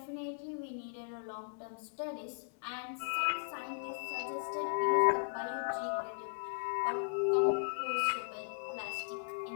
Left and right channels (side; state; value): right; silent; digital silence